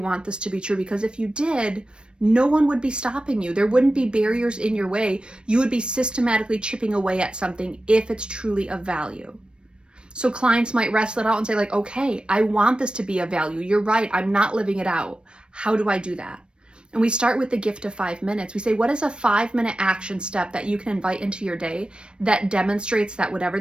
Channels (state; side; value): late; left; 0.055 ms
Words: this to be true? Because if you did, no one would be stopping you. There wouldn't be barriers in your way. You would be systematically chipping away at something if it's truly of value. So clients might wrestle it out and say like, okay, I want this to be of value. You're right. I'm not living it out. How do I do that? And we start with the gift of 5 minutes. We say, what is a 5-minute action step that you can invite into your day that demonstrates that whatever